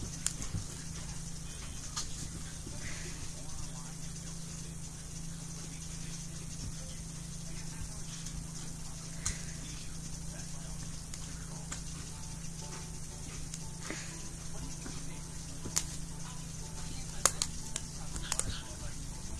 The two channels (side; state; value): both; identical; correlation 1.00